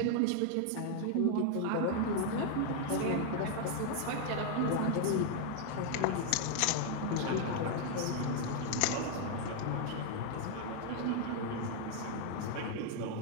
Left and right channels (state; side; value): different; both; correlation 0.00